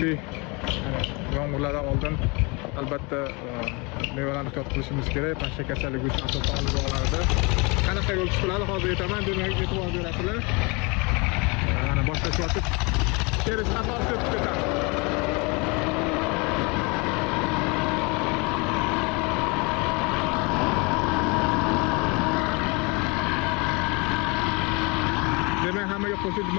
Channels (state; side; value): quieter; right; 29.0 dB